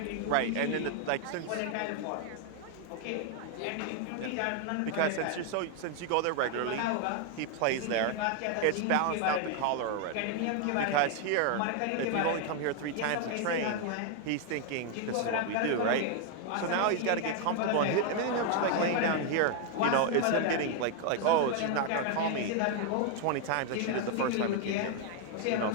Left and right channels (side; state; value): both; different; correlation 0.00